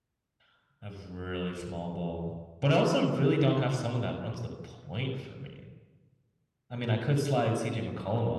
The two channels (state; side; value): identical; both; correlation 1.00